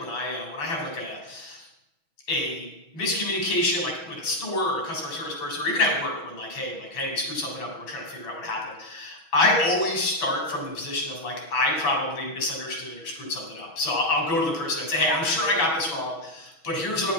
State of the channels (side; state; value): right; late; 6.1 ms